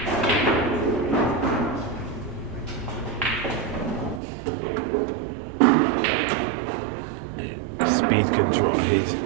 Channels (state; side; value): drops out; left; at 4.2 s